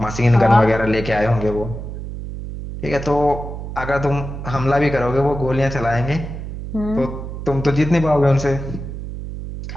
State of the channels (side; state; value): right; noise; hum, 8 dB below the sound